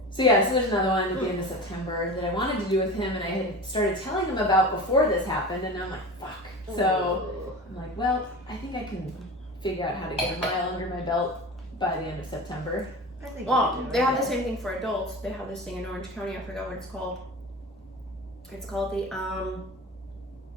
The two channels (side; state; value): both; normal; correlation 0.32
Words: So yeah, so there's another one at the end of September that I wanted to do with him, and I had started telling him about before this happened, and I'm like, fuck. So I'm like, well, I think I can figure out how to get a mile under my belt by the end of September. I think Well, they have the same thing for adults. They have this thing in Orange County. I forgot what it's called. It's called the